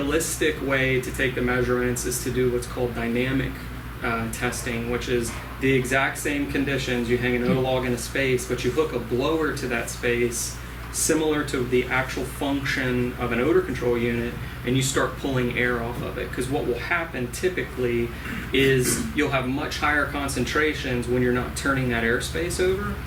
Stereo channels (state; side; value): identical; both; correlation 1.00